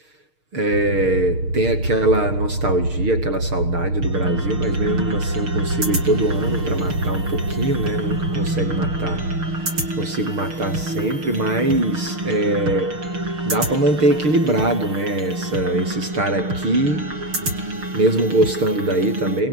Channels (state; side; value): late; left; 6.5 ms